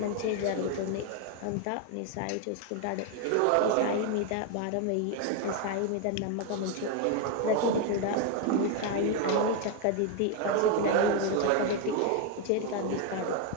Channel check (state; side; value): different; both; correlation 0.01